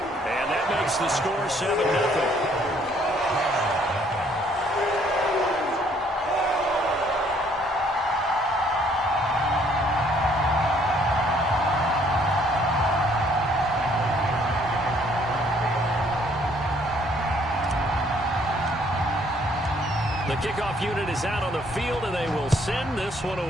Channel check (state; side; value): normal; both; correlation 0.64